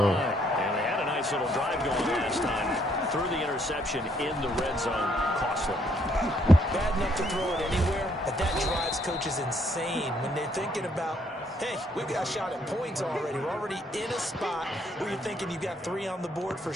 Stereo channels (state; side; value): normal; both; correlation 0.69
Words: And they had a nice little drive going last time. Threw the interception in the red zone. Costly. Bad enough to throw it anywhere, but that drives coaches insane when they're thinking about, hey, we've got a shot at points already. We're already in a spot where you're thinking you've got 3 on the board for